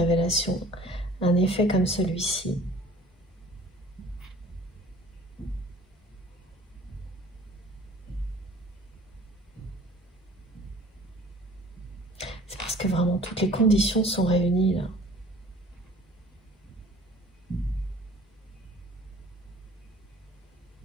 un effet comme celui-ci? C'est parce que vraiment toutes les conditions sont réunies là.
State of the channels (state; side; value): normal; both; correlation 0.50